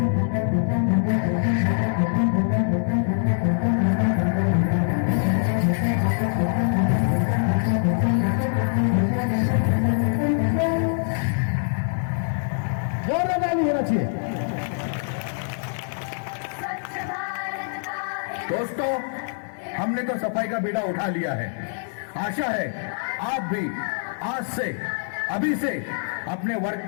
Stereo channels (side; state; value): right; silent; digital silence